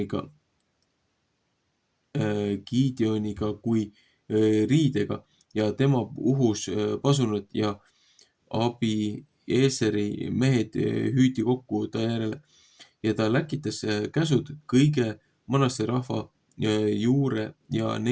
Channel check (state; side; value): identical; both; correlation 1.00